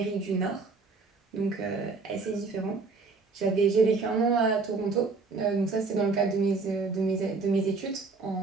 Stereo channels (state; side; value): quieter; left; 4.1 dB